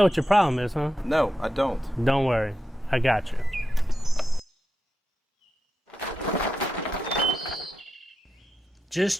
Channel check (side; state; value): both; normal; correlation 0.89